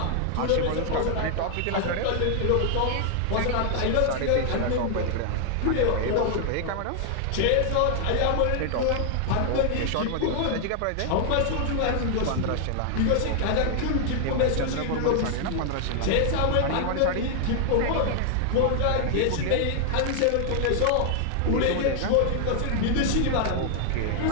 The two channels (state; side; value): different; both; correlation 0.00